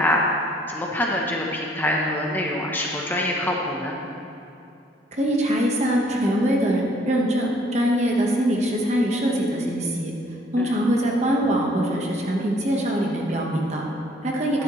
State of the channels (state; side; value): normal; both; correlation 0.61